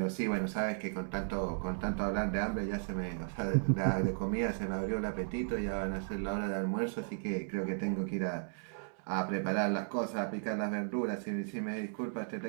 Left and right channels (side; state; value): left; silent; digital silence